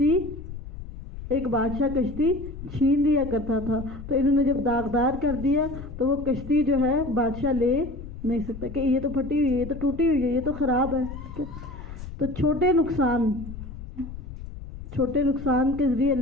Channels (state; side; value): noise; left; rumble, 12 dB below the sound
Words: ایک بادشاہ کشتی چھین لیا کرتا تھا، تو انہوں نے جب داغدار کر دیا تو وہ کشتی جو ہے بادشاہ لے نہیں سکتا کہ یہ تو پھٹی ہوئی ہے، یہ تو ٹوٹی ہوئی ہے، یہ تو خراب ہے۔ تو چھوٹے نقصان کے ذریعے